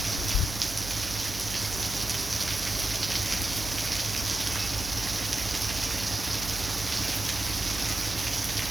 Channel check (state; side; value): noise; right; hum, 10 dB below the sound